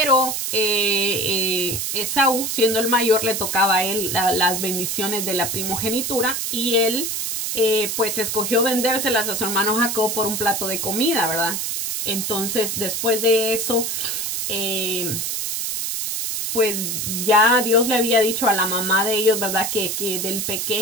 Esaú, siendo el mayor, le tocaba a él las bendiciones de la primogenitura, y él pues escogió vendérselas a su hermano Jacob por un plato de comida, ¿verdad? Entonces, después de eso, pues ya Dios le había dicho a la mamá de ellos, ¿verdad?, que del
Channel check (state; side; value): noise; right; hiss, 2 dB below the sound